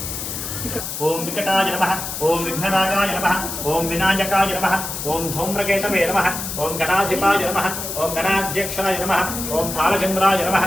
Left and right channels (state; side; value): noise; left; hiss, 6 dB below the sound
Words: ओम विकटाय नमः ओम विघ्नराजाय नमः ओम विनायकाय नमः ओम धूम्रकेतवे नमः ओम गणाधिपाय नमः ओम गणाध्यक्षाय नमः ओम भालचंद्राय नमः